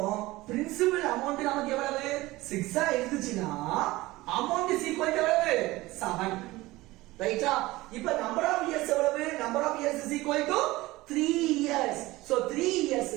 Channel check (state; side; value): quieter; left; 19.2 dB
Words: பிரின்சிபல் அமௌண்ட் நமக்கு எவ்வளவு? 6 ஆ இருந்துச்சுனா அமௌண்ட் இஸ் ஈக்குவல் டு எவ்வளவு? 7. ரைட்டா? இப்போ நம்பர் ஆஃப் இயர்ஸ் எவ்வளவு? Number of years is equal to 3 years. So 3